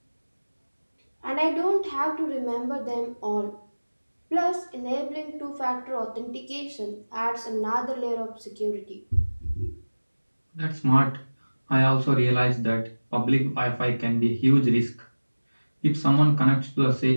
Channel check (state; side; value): inverted; both; correlation -1.00